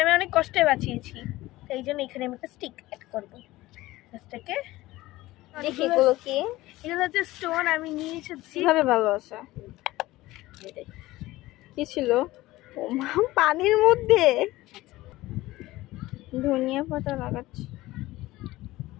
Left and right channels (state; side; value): quieter; right; 17.9 dB